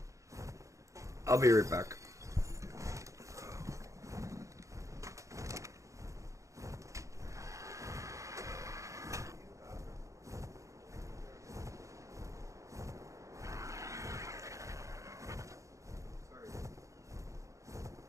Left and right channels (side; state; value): left; late; 0.15 ms